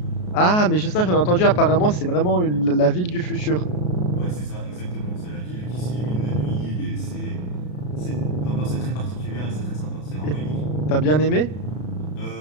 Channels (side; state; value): right; late; 33 ms